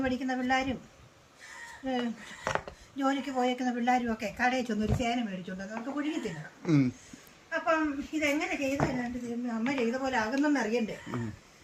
പഠിക്കുന്ന പിള്ളേരും ജോലിക്ക് പോയേക്കുന്ന പിള്ളേരും ഒക്കെ കടയിൽ ചെന്നൊരു ചേന മേടിച്ചുകൊണ്ട് നമുക്ക് പുഴുങ്ങി തിന്നണം. അപ്പം ഇതെങ്ങനെ ചെയ്തല്ലാണ്ട് അമ്മ ചെയ്ത പോലെ ആകുന്നെന്ന് അറിയണ്ടേ.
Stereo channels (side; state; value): both; identical; correlation 1.00